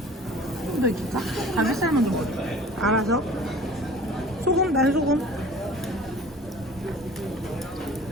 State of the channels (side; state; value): both; normal; correlation 0.45